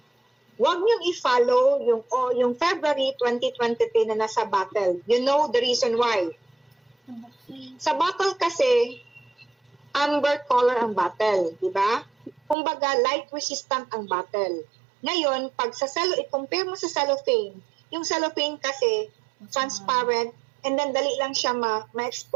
Huwag niyong i-follow yung February 2023 na nasa bottle. You know the reason why. Sa bottle kasi, amber color ang bottle, di ba? Kumbaga, light resistant ang bottle. Ngayon, pag sa i-compare mo sa cellophane, yung cellophane kasi, transparent, and then dali lang siya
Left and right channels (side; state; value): left; drops out; at 12.6 s